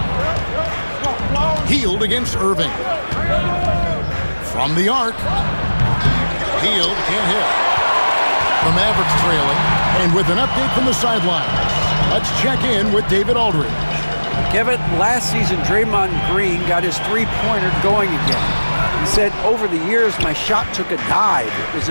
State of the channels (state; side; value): inverted; both; correlation -1.00